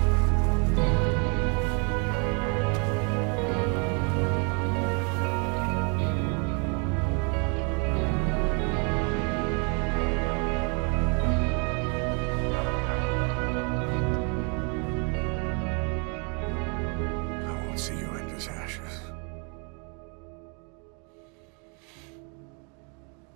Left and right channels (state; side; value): quieter; left; 35.7 dB